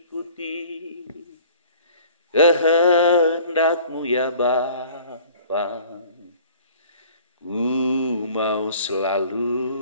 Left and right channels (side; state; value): both; inverted; correlation -0.49